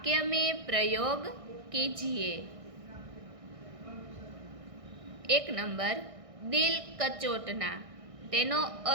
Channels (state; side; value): late; left; 1.6 ms